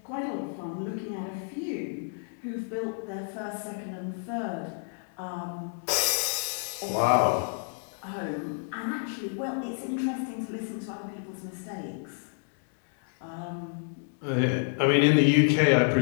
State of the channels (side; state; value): right; silent; digital silence